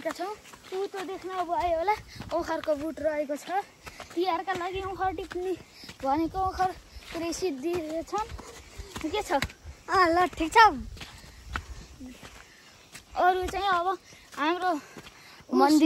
छौँ। उतो देख्न भयो होला ओखरको बुट रहेको छ। तिहारका लागि ओखर टिप्ने भनेको ओखर पुरै सिद्धिछन्। के छ? ल ठिक छ। अरू चाहिँ अब हाम्रो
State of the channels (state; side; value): identical; both; correlation 1.00